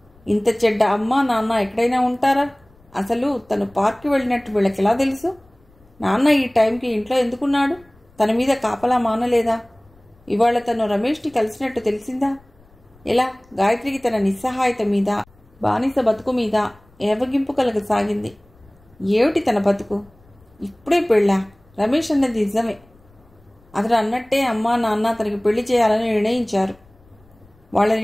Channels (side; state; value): left; noise; rumble, 30 dB below the sound